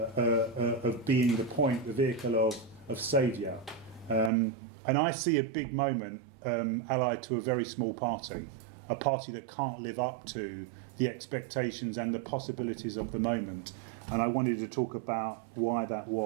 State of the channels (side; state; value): left; drops out; at 4.3 s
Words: being the point, the vehicle of saviour. And I see a big moment allied to a very small party, a party that can't live up to the expectations and the possibilities of the moment. And I wanted to talk about why that